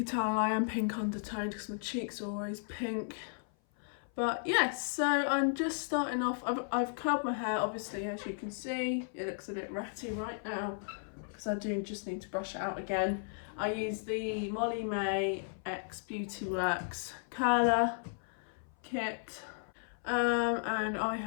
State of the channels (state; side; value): silent; right; 54 dB below the other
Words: tell I am pink undertoned because my cheeks are always pink. But yes, so I'm just starting off. I've curled my hair, obviously, as you can see. It looks a bit ratty right now because I do just need to brush it out again. I use the Molly May X Beauty Works curler kit, and